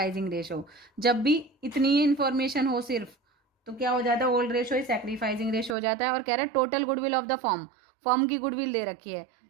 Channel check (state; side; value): drops out; left; at 5.8 s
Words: रेशो। जब भी इतनी ही इन्फॉर्मेशन हो सिर्फ तो क्या हो जाता है, ओल्ड रेशो ही सेक्रीफाइसिंग रेशो हो जाता है। और कह रहे हैं total goodwill of the form, form की गुडविल दे रखी है